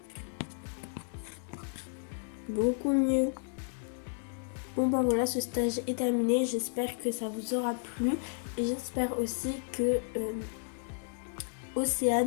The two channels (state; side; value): silent; right; 56 dB below the other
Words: Beaucoup mieux. Bon bah voilà, ce stage est terminé. J'espère que ça vous aura plu. Et j'espère aussi que